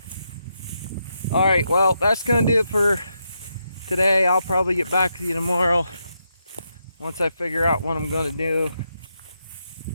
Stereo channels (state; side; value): inverted; both; correlation -0.83